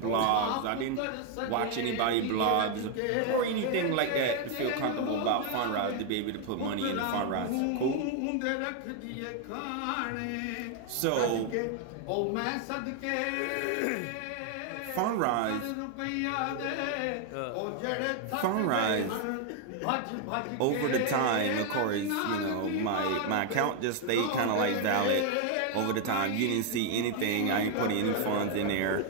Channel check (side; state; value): both; different; correlation 0.01